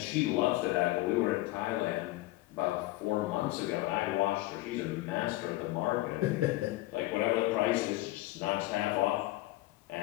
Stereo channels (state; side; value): quieter; right; 18.2 dB